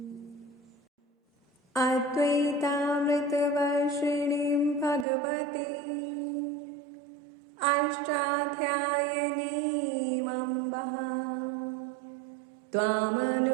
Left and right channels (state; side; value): drops out; left; at 5.1 s